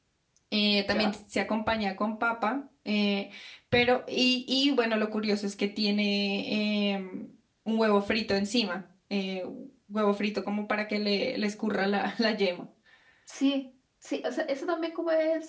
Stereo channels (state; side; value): identical; both; correlation 1.00